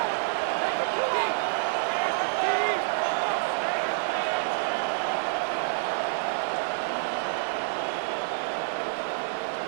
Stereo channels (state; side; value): silent; left; digital silence